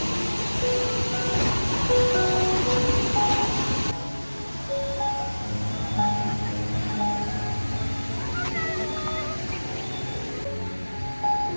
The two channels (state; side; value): inverted; both; correlation -1.00